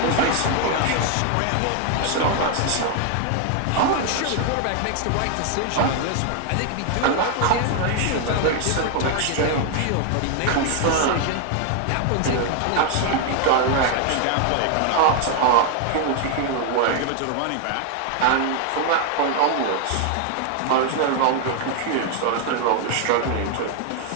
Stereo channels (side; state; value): both; different; correlation 0.00